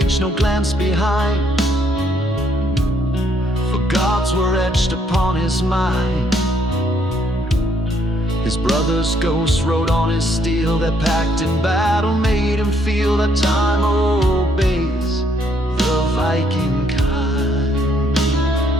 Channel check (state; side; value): normal; both; correlation 0.69